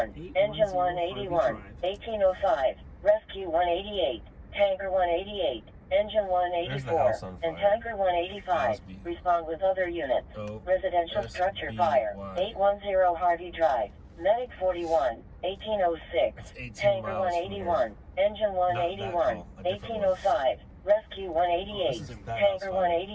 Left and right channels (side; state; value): both; identical; correlation 1.00